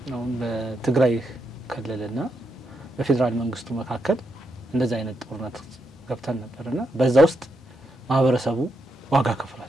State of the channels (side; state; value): both; normal; correlation 0.81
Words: ነው በትግራይ ክልልና በፌደራል መንግስቱ መካከል እንደዛ አይነት ጦርነት ገብተን ነበርና በዛ ውስጥ ማህበረሰቡ ዋጋ